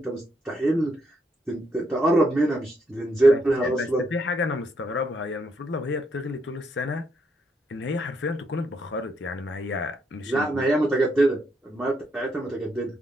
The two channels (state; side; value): normal; both; correlation 0.76